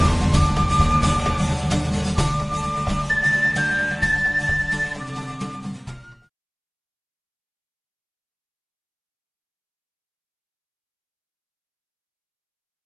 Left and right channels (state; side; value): identical; both; correlation 1.00